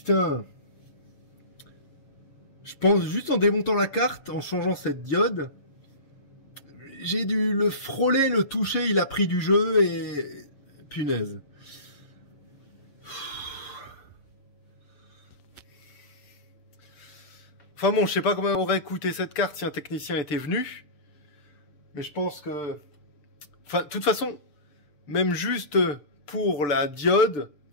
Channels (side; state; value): right; late; 6.8 ms